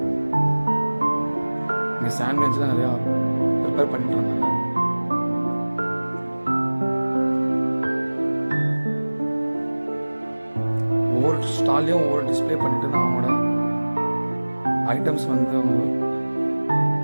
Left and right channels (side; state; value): both; inverted; correlation -1.00